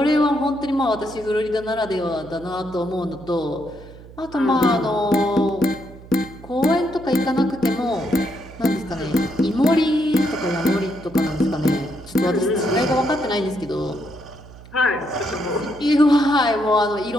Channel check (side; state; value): right; noise; hum, 19 dB below the sound